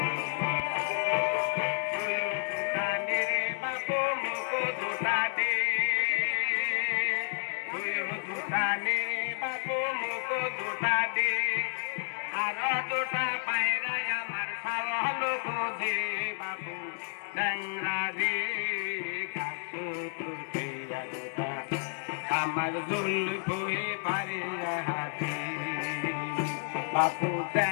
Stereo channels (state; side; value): silent; right; digital silence